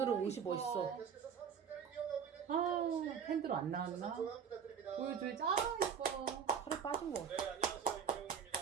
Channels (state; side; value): quieter; left; 7.1 dB